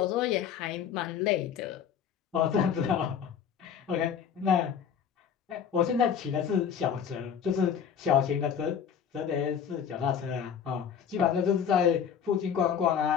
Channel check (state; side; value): quieter; right; 7.9 dB